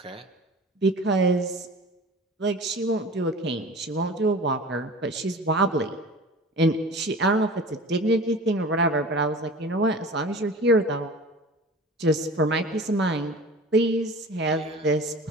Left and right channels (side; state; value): both; normal; correlation 0.39